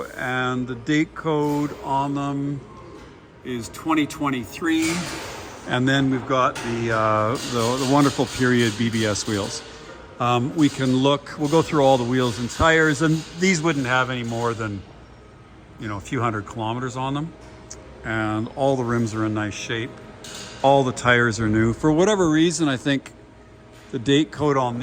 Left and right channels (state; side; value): identical; both; correlation 1.00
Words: and the date code on them is 2023. And then we've got the wonderful period BBS wheels. We can look, we'll go through all the wheels and tires, and these wouldn't have any more than, you know, a few hundred kilometers on them. And all the rims are in nice shape. All the tires are new. For whatever reason, I think the date code on